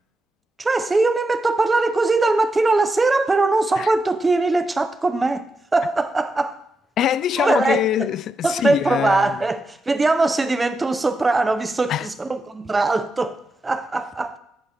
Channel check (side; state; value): both; normal; correlation 0.86